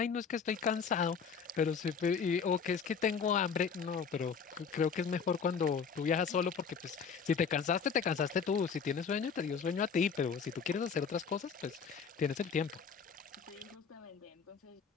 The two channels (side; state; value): right; quieter; 6.1 dB